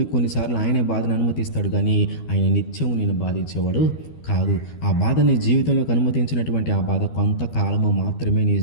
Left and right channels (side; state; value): right; late; 12 ms